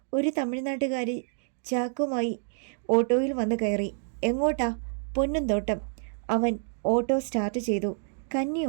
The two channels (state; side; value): silent; left; digital silence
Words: ഒരു തമിഴ്നാട്ടുകാരി ചാക്കുമായി ഓട്ടോയിൽ വന്ന് കയറി. എങ്ങോട്ടാ? പൊന്നുംതോട്ടം. അവൻ ഓട്ടോ സ്റ്റാർട്ട് ചെയ്തു. കന്നി